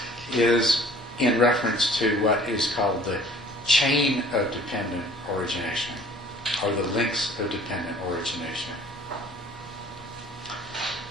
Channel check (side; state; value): both; normal; correlation 0.51